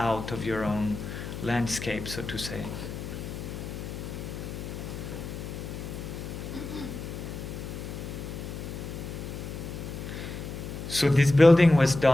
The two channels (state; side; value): noise; left; hum, 7 dB below the sound